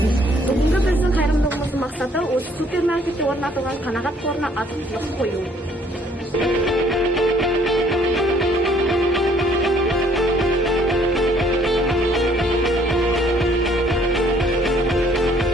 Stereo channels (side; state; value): both; normal; correlation 0.61